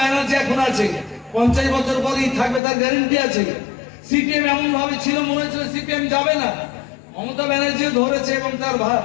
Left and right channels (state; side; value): drops out; right; at 2.6 s